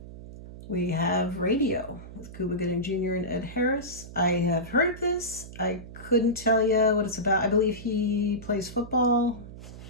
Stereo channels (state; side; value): noise; right; hum, 14 dB below the sound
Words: We have Radio with Cuba Gooding Jr. and Ed Harris. I have heard of this. I couldn't tell you what it's about. I believe he plays football.